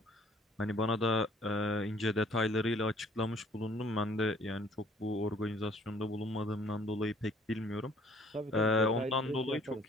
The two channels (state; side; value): normal; both; correlation 0.58